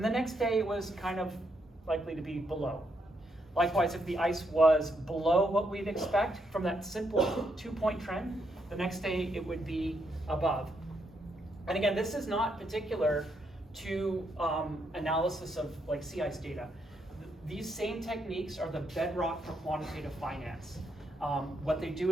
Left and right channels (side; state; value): both; normal; correlation 0.78